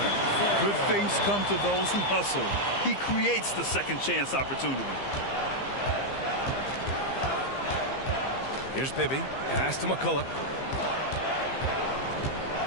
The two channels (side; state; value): right; late; 15 ms